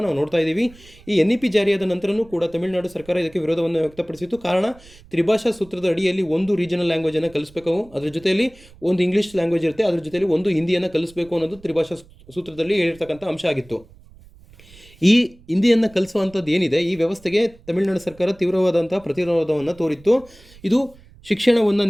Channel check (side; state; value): right; noise; rumble, 24 dB below the sound